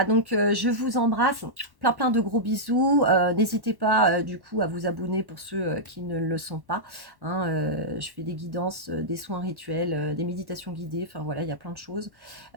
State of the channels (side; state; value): left; late; 1.1 ms